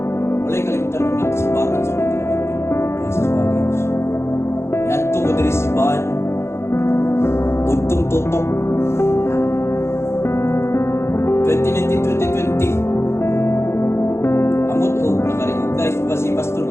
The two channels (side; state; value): right; late; 0.13 ms